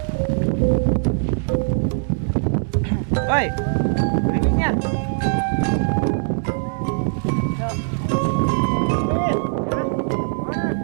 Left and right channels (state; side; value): silent; left; digital silence